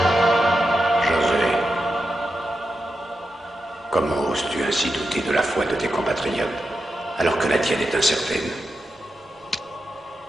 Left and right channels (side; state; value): both; normal; correlation 0.88